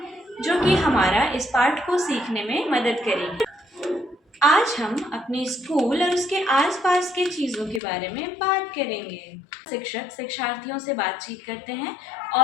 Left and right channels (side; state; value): right; drops out; at 7.8 s